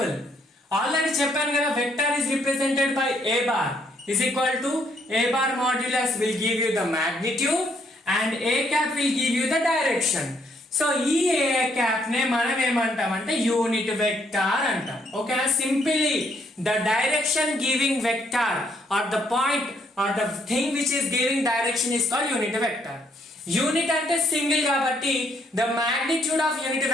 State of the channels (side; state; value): both; normal; correlation 0.70